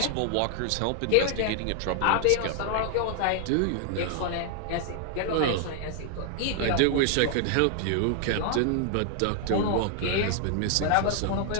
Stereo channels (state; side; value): different; both; correlation 0.00